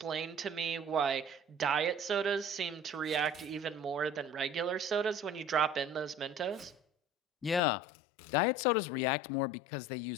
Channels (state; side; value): drops out; right; at 7.6 s